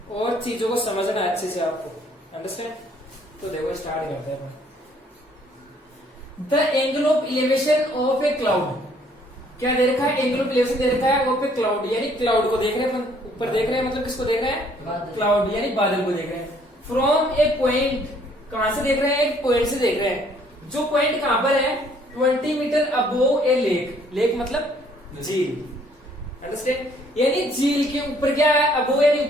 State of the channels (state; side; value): normal; both; correlation 0.62